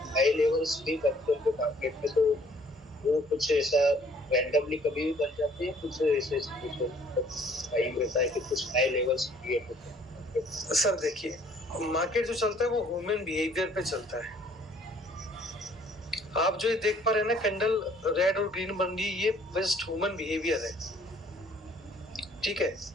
नए लेवल्स भी बनते हैं मार्केट में, तो वो कुछ ऐसा रैंडमली कभी भी बन जाते हैं, कुछ ऐसे टाइम रहता है कि कुछ नए लेवल्स क्रिएट होते हैं? सर देखिए, मार्केट जो चलता है वो ह्यूमन बिहेवियर पे चलता है। आप जो ये देख पा रहे हैं ना, कैंडल रेड और ग्रीन बन रही, ये जस्ट ह्यूमन बिहेवियर है, ठीक है।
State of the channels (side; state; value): both; normal; correlation 0.59